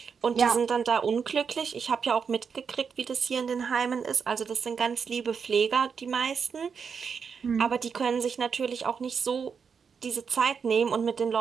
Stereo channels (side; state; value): left; quieter; 6.2 dB